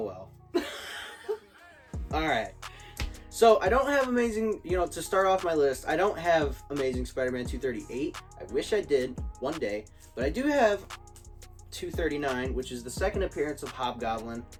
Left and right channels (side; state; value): both; identical; correlation 1.00